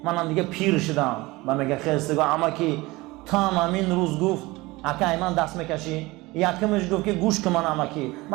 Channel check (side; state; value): left; quieter; 21.4 dB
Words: منم دیگه پیر شدم و میگه خیستگاه امکی تا همین روز گفت اکه من دست میکشی یکمش گفت که گوش که من امکی